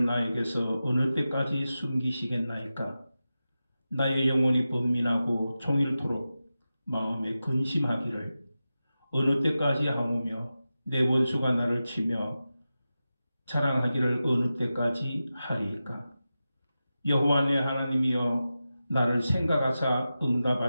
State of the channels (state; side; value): inverted; both; correlation -0.93